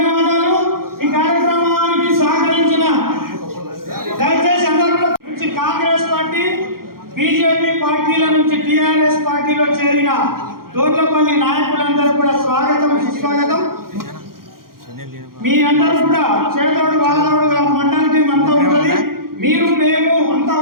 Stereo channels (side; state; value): left; late; 0.92 ms